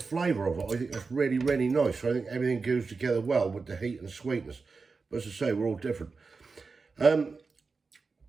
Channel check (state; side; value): quieter; left; 4.5 dB